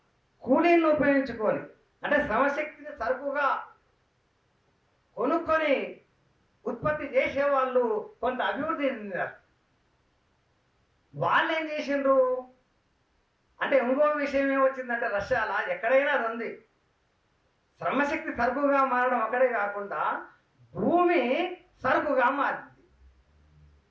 కూలీలను ఉపయోగించుకొని అంటే శ్రమశక్తిని సరుకుగా కొనుక్కొని ఉత్పత్తి చేసేవాళ్ళు కొంత అభివృద్ధి చెందినారు. వాళ్ళు ఏం చేసిండ్రు అంటే ఇంకో విషయం ఏమొచ్చిందంటే రష్యాలో ఎక్కడైనా అది ఉంది. శ్రమశక్తి సరుకుగా మారడం అక్కడే కాకుండా భూమి సరుకుగా మారింది.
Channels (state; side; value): identical; both; correlation 1.00